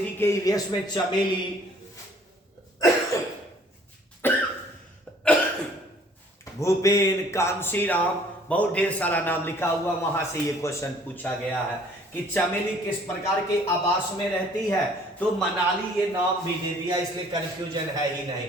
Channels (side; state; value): both; normal; correlation 0.57